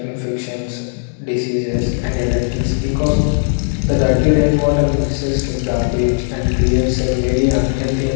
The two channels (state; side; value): silent; right; digital silence